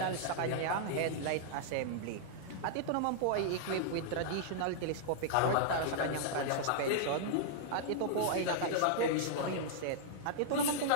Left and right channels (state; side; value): different; both; correlation -0.01